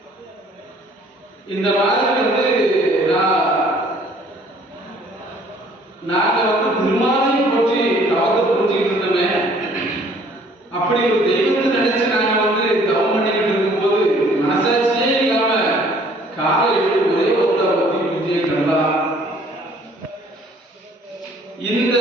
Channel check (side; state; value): both; normal; correlation 0.57